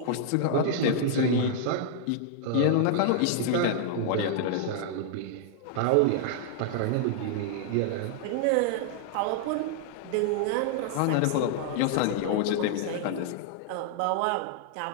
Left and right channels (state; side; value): different; both; correlation -0.01